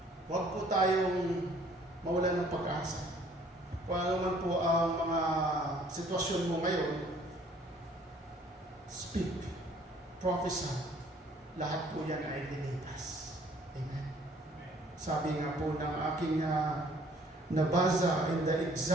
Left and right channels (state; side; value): normal; both; correlation 0.58